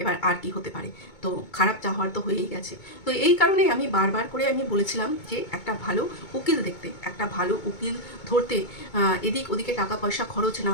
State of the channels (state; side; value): late; right; 2.2 ms